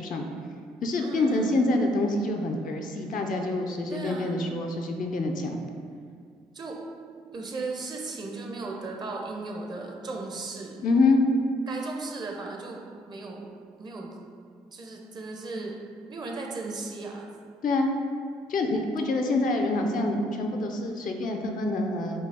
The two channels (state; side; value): normal; both; correlation 0.68